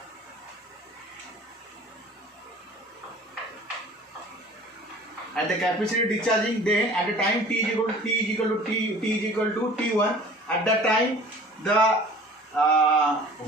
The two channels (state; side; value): normal; both; correlation 0.46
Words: at the capacitor discharging, then at the time t is equal to t1, at that time the